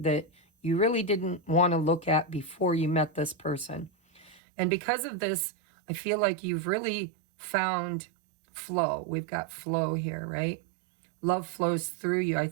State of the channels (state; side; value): drops out; left; at 4.4 s